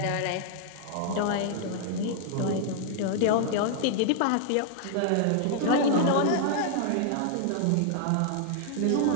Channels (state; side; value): different; both; correlation 0.00